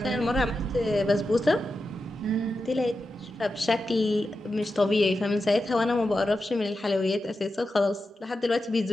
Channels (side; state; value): both; normal; correlation 0.90